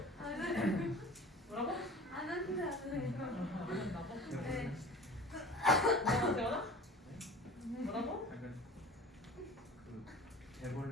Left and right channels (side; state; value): both; normal; correlation 0.40